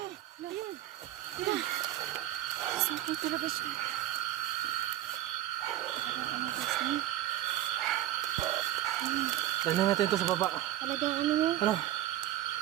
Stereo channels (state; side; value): quieter; left; 13.7 dB